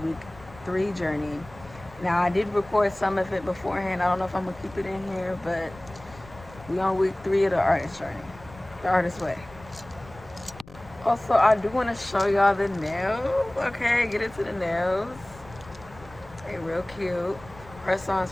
3 journey. Now, I did record some of it beforehand. I don't know if I'm gonna keep it in here, but we on week 3 of the artist journey, the artist way. Also, I do want to show y'all the nails. Okay, get into the nails. They real cute.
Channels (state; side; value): noise; left; rumble, 20 dB below the sound